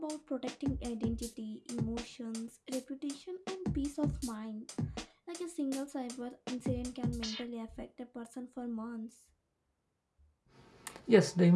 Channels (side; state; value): both; identical; correlation 1.00